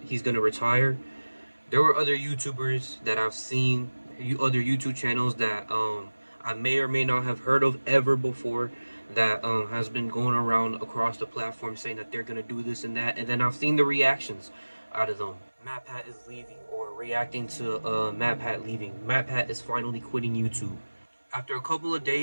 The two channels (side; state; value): both; inverted; correlation -1.00